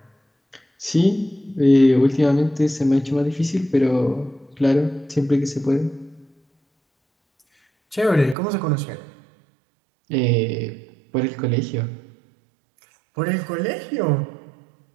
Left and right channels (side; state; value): left; drops out; at 8.3 s